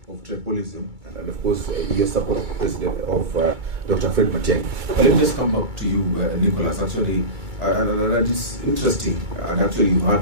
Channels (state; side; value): late; left; 2.3 ms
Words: of tribalism and of course your support president of Dr. Fred Matiang'i. But let me just come back to you, Nicholas. Actually, and it's interesting. And actually, you've